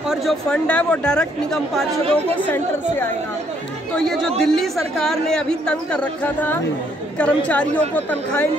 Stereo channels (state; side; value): normal; both; correlation 0.69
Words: और जो फंड है वो डायरेक्ट निगम पार्षदों को सेंटर से आएगा। तो ये जो दिल्ली सरकार ने अभी तंग कर रखा था, कर्मचारियों को तनख्वाहें